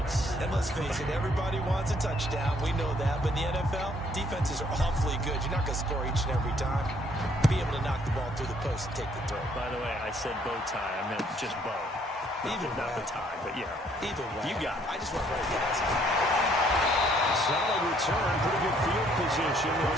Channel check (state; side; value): normal; both; correlation 0.65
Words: And let's face it, everybody wants a touchdown. We know that. But in the NFL, defenses are awfully good. You're not going to score each and every time. Be able to knock the ball through the post and take the throw. By the way, I said bow tie. I meant just bow. Not the tie, but yeah. Either way. You got it. I just went right past it. Solid return. Pretty good field position.